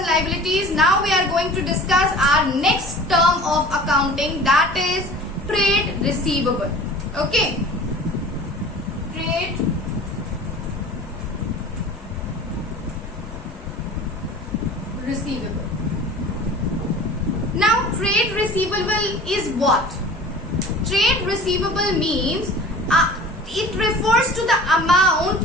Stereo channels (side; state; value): both; normal; correlation 0.42